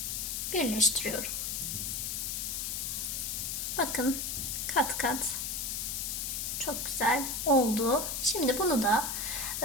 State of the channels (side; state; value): left; noise; hiss, 2 dB below the sound